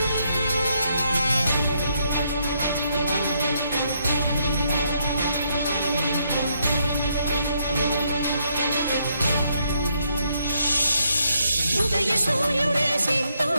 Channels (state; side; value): inverted; both; correlation -0.75